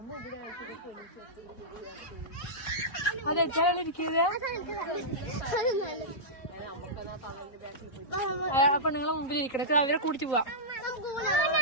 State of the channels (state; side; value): late; right; 3.8 ms